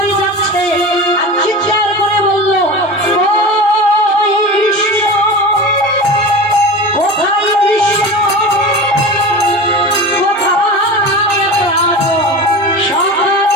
যাচ্ছে, আর চিৎকার করে বলল ওই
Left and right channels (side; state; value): both; normal; correlation 0.30